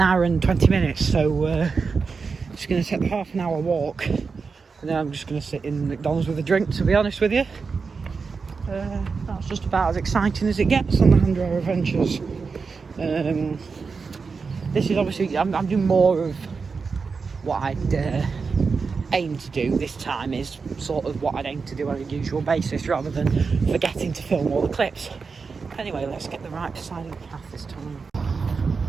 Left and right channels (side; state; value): left; quieter; 5.0 dB